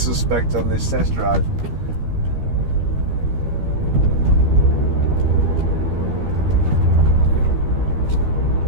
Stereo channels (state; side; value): late; left; 13 ms